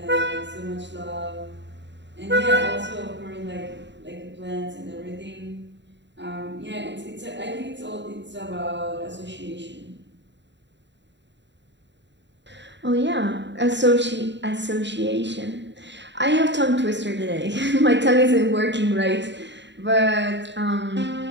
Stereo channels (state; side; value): late; left; 0.52 ms